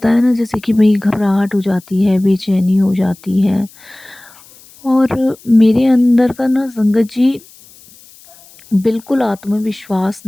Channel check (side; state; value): left; noise; hiss, 25 dB below the sound